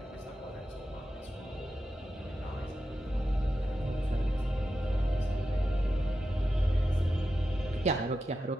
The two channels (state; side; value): normal; both; correlation 0.90